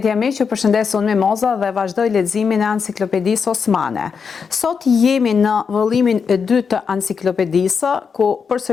miq, ju përshëndes unë Mimoza dhe vazhdoj leximin e Enciklopedisë Osmane. Sot jemi në vëllimin e dytë të Enciklopedisë, ku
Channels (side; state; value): right; quieter; 6.0 dB